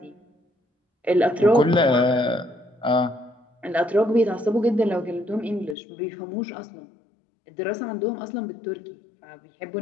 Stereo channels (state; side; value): drops out; right; at 5.8 s